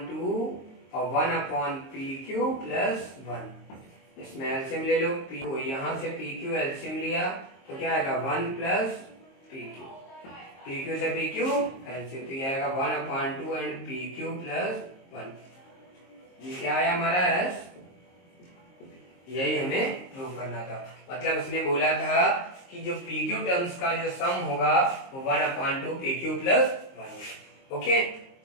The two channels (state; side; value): late; right; 22 ms